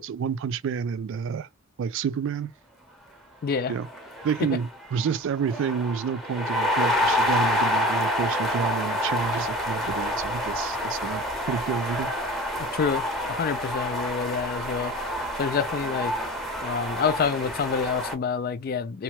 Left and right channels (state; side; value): normal; both; correlation 0.33